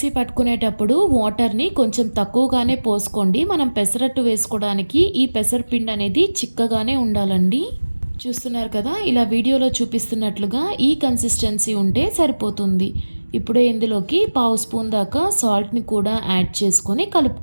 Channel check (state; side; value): inverted; both; correlation -1.00